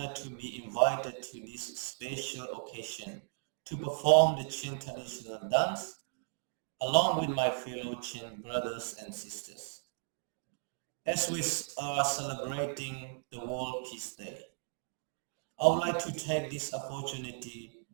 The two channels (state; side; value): silent; left; digital silence